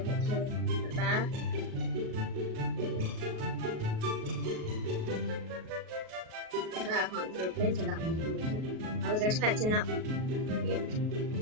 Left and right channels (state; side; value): late; left; 38 ms